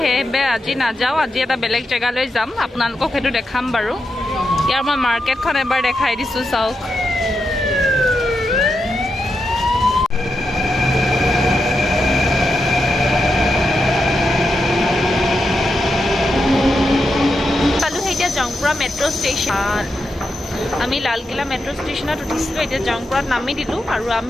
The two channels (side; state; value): both; normal; correlation 0.86